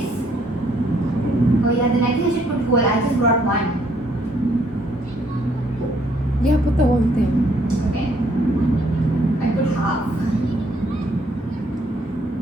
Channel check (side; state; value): both; normal; correlation 0.67